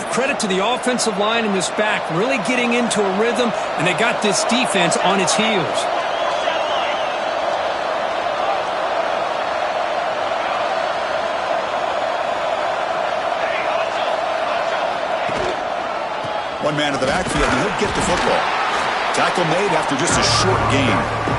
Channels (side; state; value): both; identical; correlation 1.00